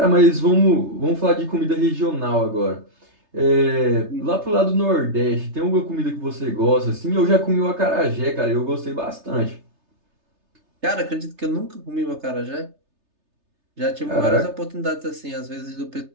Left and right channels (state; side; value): late; left; 3.3 ms